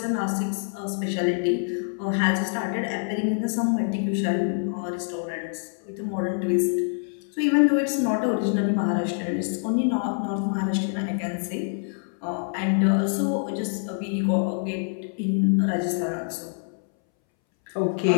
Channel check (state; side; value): silent; right; 61 dB below the other